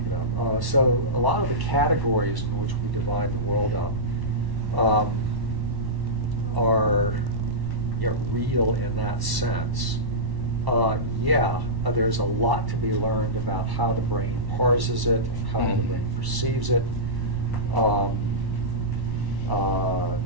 it up. So a lot of the categories in which we divide the world up are, you know, real in that sense. There's a lot to be learned about how the brain parses it, how the brain perceives it.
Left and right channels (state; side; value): late; left; 1.1 ms